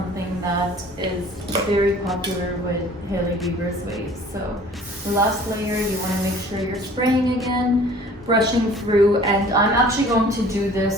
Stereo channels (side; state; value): both; normal; correlation 0.49